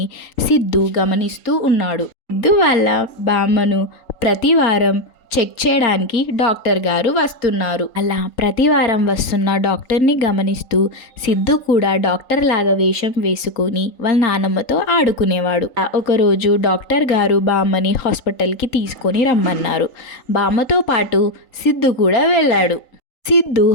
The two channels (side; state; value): right; late; 3.9 ms